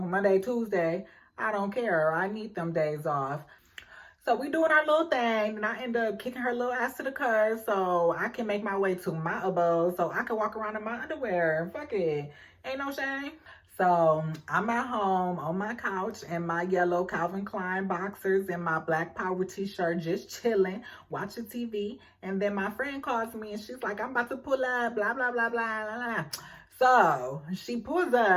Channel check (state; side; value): identical; both; correlation 1.00